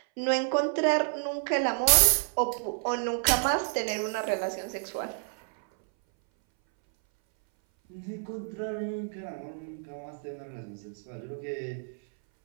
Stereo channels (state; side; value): silent; left; 58 dB below the other